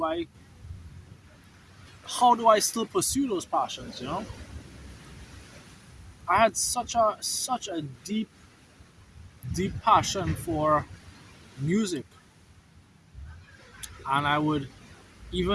how do I still pursue those passions? I had such a deep passion for music, and I would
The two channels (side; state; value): both; identical; correlation 1.00